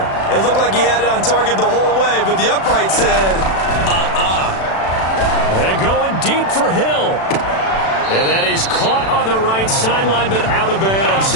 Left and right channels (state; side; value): late; right; 36 ms